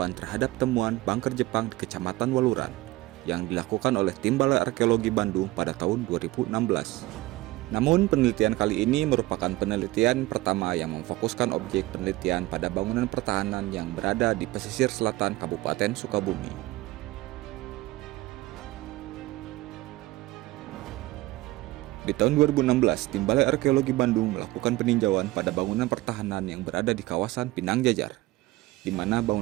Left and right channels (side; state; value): left; quieter; 18.8 dB